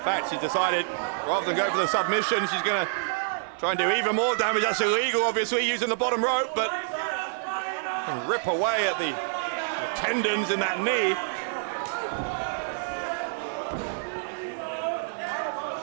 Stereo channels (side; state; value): left; silent; 60 dB below the other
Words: fact, she's decided, rather than go for the submission, she's going to try and do even more damage. That's illegal, obviously, using the bottom rope, but and rip away at the tendons in that knee.